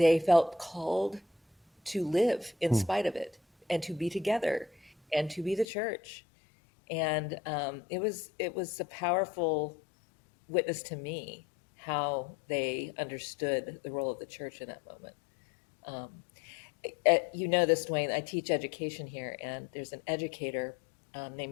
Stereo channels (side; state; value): right; drops out; at 5.7 s